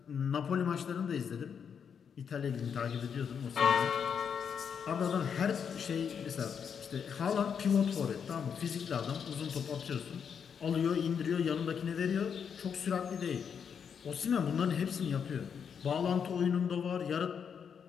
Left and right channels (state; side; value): quieter; right; 7.1 dB